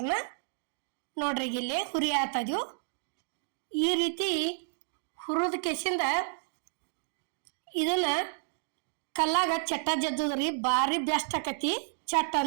ನೋಡ್ರಿ ಇಲ್ಲಿ ಹುರಿ ಆತದ್ವು. ಈ ರೀತಿ ಹುರಿದ ಕೆಸಿಂದ ಇದನ್ನ ಕಲ್ಲಾಗ ಚಟ್ಟ ಜದ್ದದ್ರಿ ಭಾರಿ ಬೆಸ್ಟ್ ಆಕತಿ ಚಟ್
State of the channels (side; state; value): left; silent; digital silence